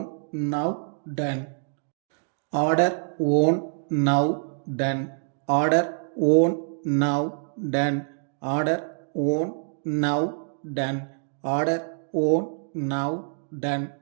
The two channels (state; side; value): silent; left; digital silence